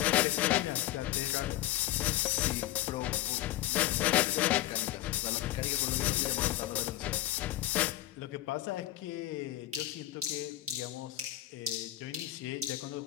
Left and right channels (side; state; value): right; quieter; 14.8 dB